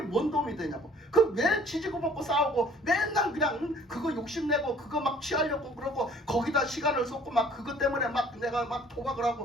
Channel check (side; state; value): both; normal; correlation 0.54